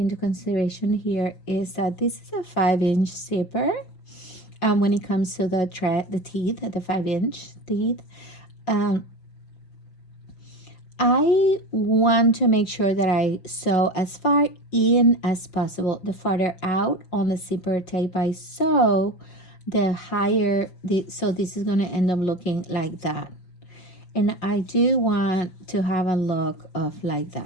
consideration here is that this is a 5-inch zipper. When it comes to the teeth, the 5-inch teeth, I want to make sure that I sew as far in as possible. The farther out on the zipper tape I sew, the higher so this is going to end up looking like that. And I do want to have a look of like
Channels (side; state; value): right; late; 5.8 ms